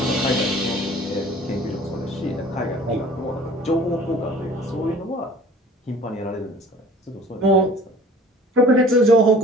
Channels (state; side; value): normal; both; correlation 0.48